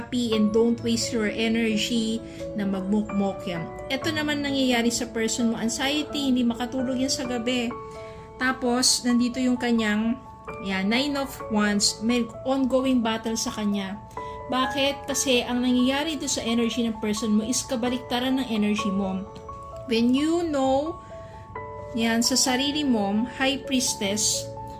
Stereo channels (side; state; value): both; identical; correlation 1.00